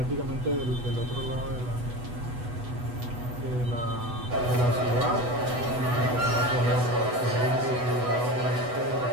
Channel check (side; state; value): left; late; 8.1 ms